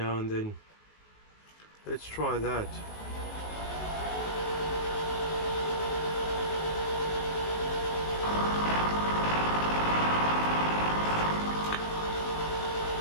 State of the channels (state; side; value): late; right; 19 ms